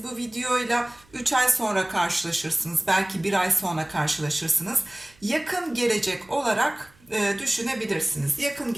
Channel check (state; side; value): noise; right; hum, 29 dB below the sound